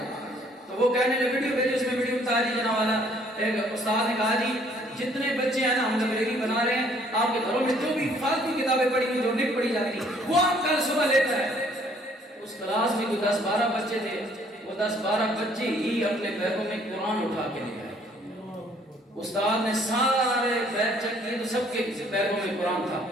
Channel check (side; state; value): both; normal; correlation 0.61